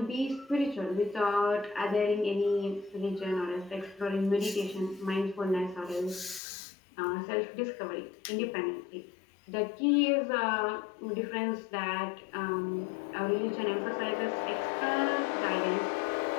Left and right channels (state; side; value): drops out; right; at 6.4 s